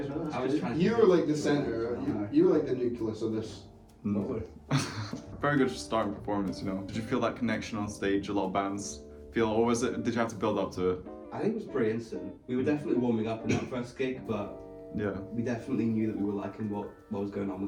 as well, that's I was good. trying to. You were like the center. You were like the nucleus of this. Lovely. Very good starting performance, you know. Did you feel that connection on stage? A lot of bands feel, or was it? Did you have to build up to it? I think it was pretty instant. We were definitely warming up in that first gig, but Yeah. we definitely knew that we were liking what was going on with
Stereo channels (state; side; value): identical; both; correlation 1.00